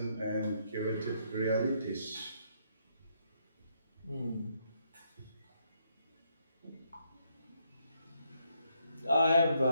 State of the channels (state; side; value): inverted; both; correlation -0.74